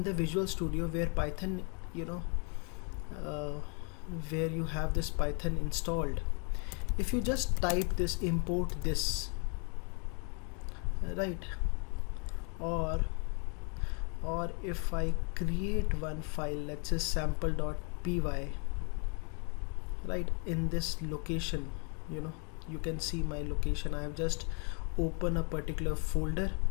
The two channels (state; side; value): quieter; right; 36.8 dB